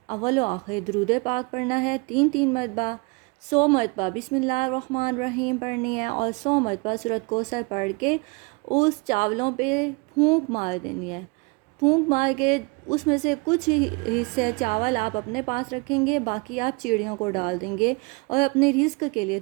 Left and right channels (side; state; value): left; quieter; 29.4 dB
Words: اول و آخر درود پاک پڑھنا ہے 3 مرتبہ، 100 مرتبہ بسم اللہ الرحمن الرحیم پڑھنی ہے، اور 100 مرتبہ سورۃ کوثر پڑھ کے اس چاولوں پہ پھونک مار دینی ہے۔ پھونک مار کے اس میں سے کچھ حصے چاول آپ اپنے پاس رکھیں گے، باقی آپ چڑیوں کو ڈال دیں گے اور اپنے رزق کے لیے